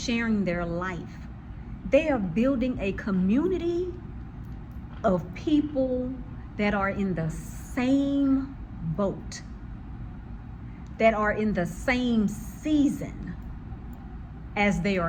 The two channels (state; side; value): identical; both; correlation 1.00